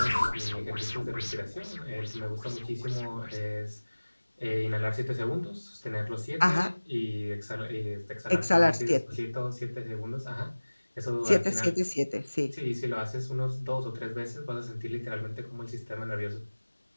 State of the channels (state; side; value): inverted; both; correlation -1.00